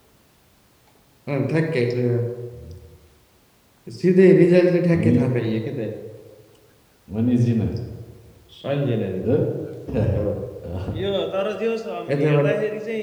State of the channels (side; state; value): both; identical; correlation 1.00